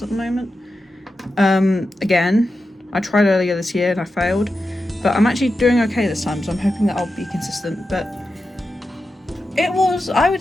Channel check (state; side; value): normal; both; correlation 0.90